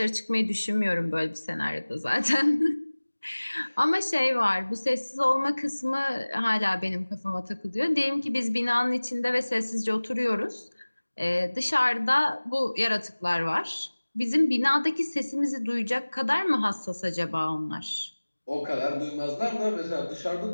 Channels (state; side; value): inverted; both; correlation -1.00